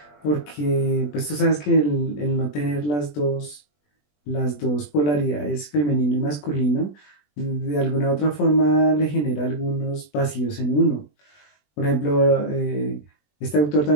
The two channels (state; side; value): late; right; 20 ms